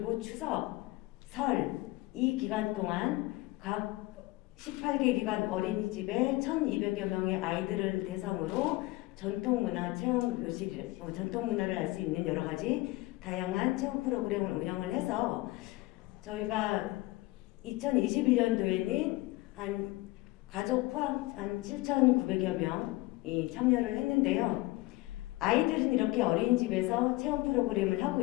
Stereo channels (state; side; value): quieter; right; 20.4 dB